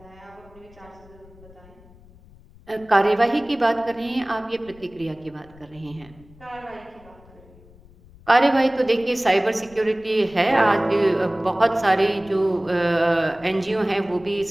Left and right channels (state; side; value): noise; left; rumble, 25 dB below the sound